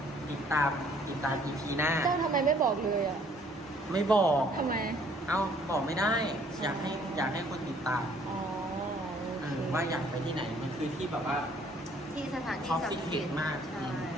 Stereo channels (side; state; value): both; normal; correlation 0.60